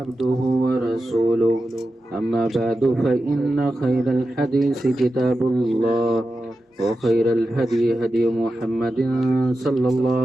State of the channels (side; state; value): both; normal; correlation 0.91